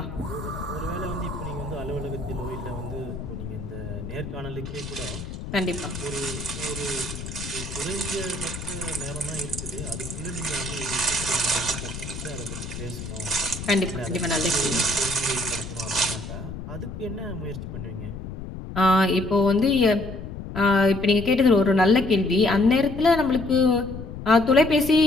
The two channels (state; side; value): noise; left; rumble, 9 dB below the sound